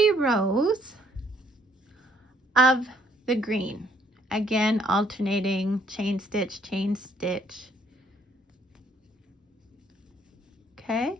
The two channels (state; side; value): normal; both; correlation 0.65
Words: rows of the green. Again, alternating chain stitch, chain stitch. Okay,